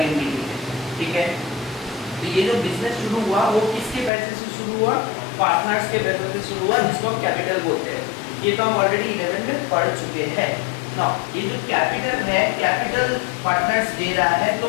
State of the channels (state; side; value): drops out; right; at 4.1 s